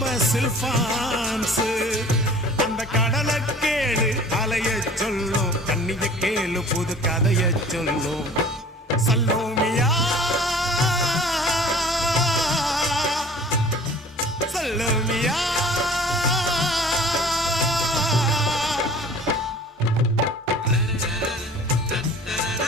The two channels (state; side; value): normal; both; correlation 0.46